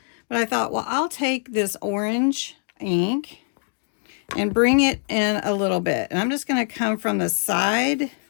but I thought, well, I'll take this orange ink and bring it in a little bit. And I'm just going to come from the side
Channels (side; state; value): right; silent; 58 dB below the other